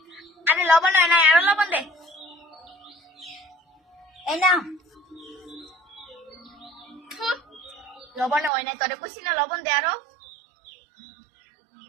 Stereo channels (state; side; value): drops out; left; at 8.5 s